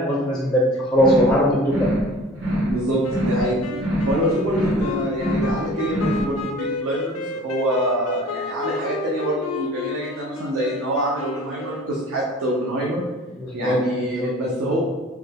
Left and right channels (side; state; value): both; normal; correlation 0.45